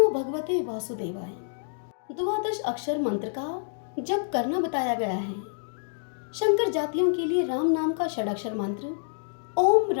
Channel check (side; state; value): right; silent; digital silence